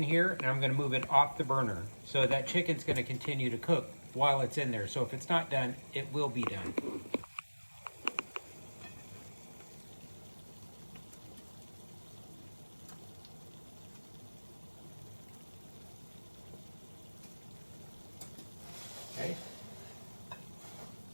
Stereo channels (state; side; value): inverted; both; correlation -1.00